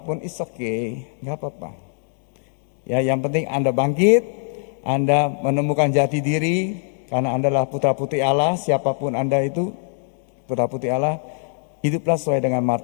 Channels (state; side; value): silent; right; digital silence